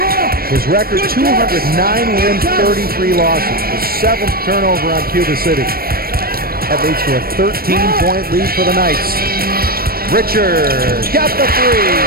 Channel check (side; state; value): left; late; 0.44 ms